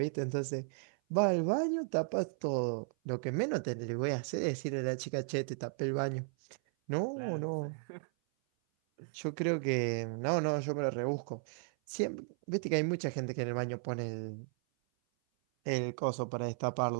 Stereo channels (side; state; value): left; silent; 54 dB below the other